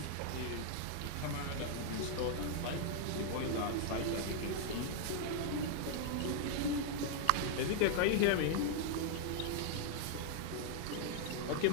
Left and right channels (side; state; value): both; different; correlation 0.00